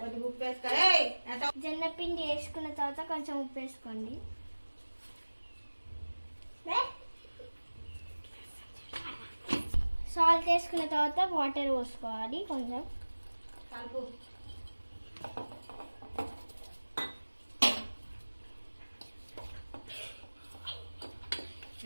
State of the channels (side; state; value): both; inverted; correlation -1.00